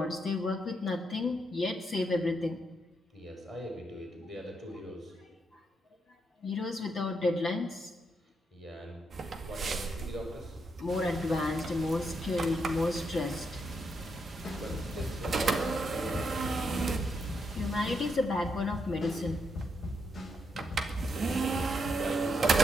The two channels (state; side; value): normal; both; correlation 0.80